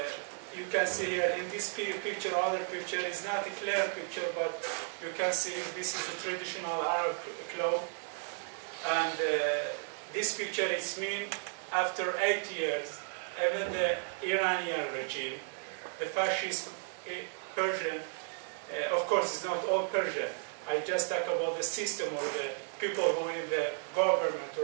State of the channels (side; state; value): left; silent; 55 dB below the other